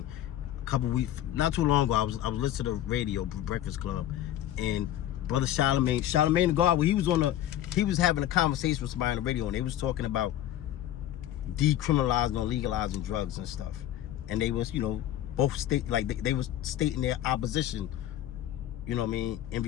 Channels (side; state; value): right; quieter; 12.4 dB